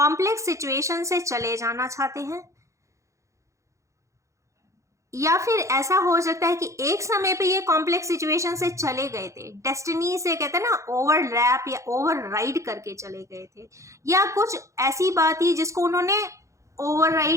सिचुएशन से चले जाना चाहते हैं, या फिर ऐसा हो सकता है कि एक समय पे ये कॉम्प्लेक्स सिचुएशन से चले गए थे, डेस्टिनी से कहते हैं ना ओवरलैप या ओवरराइड करके चले गए थे, या कुछ ऐसी बात थी जिसको उन्होंने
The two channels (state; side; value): late; left; 0.15 ms